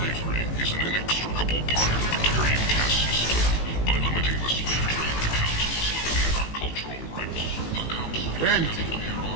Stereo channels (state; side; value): late; right; 18 ms